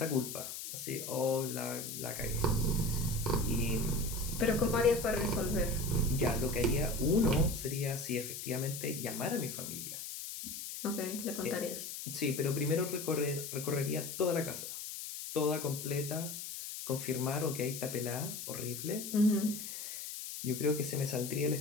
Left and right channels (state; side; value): noise; left; hiss, 7 dB below the sound